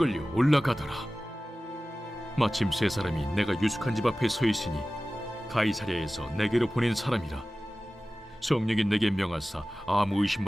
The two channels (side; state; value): both; normal; correlation 0.96